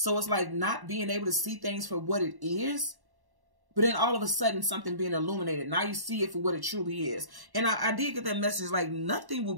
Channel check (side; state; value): left; late; 1.1 ms